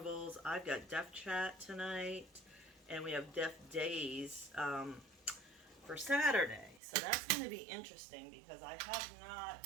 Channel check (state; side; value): drops out; left; at 6.8 s